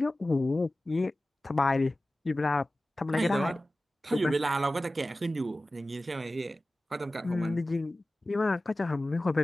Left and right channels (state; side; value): normal; both; correlation 0.96